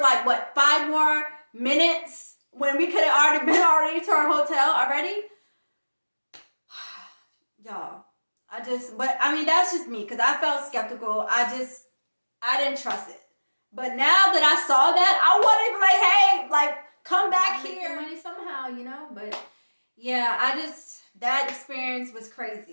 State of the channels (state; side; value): inverted; both; correlation -1.00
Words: what, 5 more minutes when we could have already been to our hotel already. Y'all, but I mean, that's just me, because I felt skeptical. I didn't trust it. But now that I saw that, I wanted to be like, hey, like, come back here. Make money somehow, you know? But yeah, that experience was